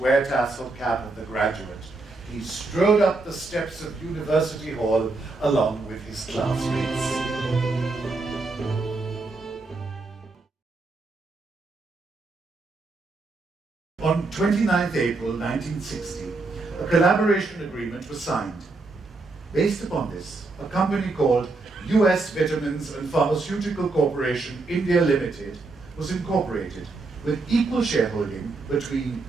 tassel cap of the graduate, he strode up the steps of University Hall along with his classmates. On 29th April 1960, a collaboration agreement was signed. Based upon this, a company called US Vitamins and Pharmaceutical Corporation India Limited was incorporated with equal shareholding between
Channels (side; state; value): left; quieter; 3.5 dB